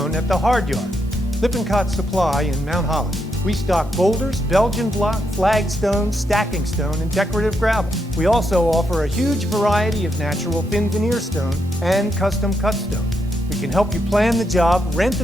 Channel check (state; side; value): normal; both; correlation 0.80